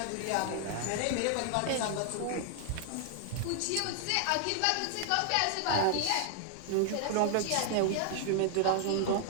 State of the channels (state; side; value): different; both; correlation 0.00